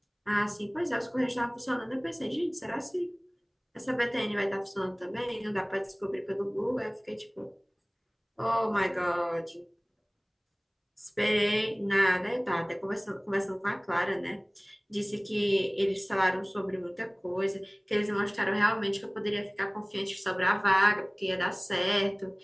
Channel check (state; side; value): identical; both; correlation 1.00